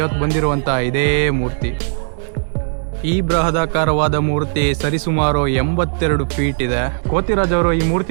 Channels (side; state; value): left; silent; 68 dB below the other